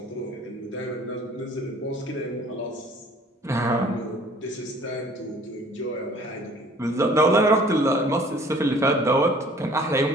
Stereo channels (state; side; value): normal; both; correlation 0.53